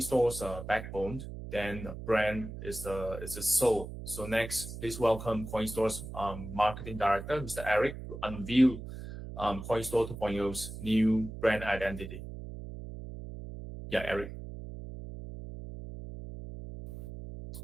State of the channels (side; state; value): right; noise; hum, 10 dB below the sound